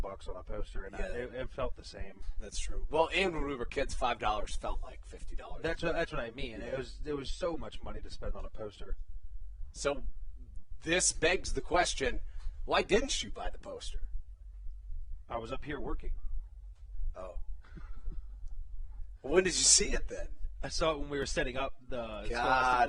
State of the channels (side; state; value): both; identical; correlation 1.00